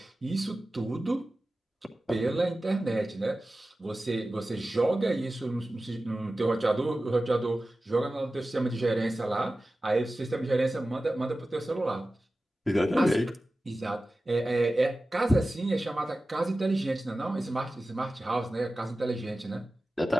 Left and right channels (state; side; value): normal; both; correlation 0.95